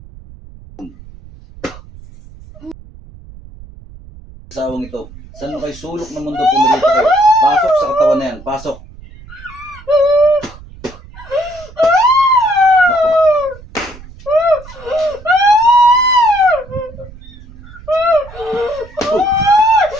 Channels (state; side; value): noise; right; rumble, 19 dB below the sound